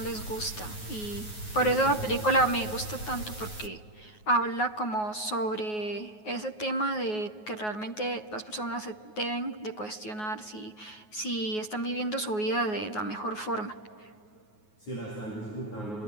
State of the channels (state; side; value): late; right; 9.4 ms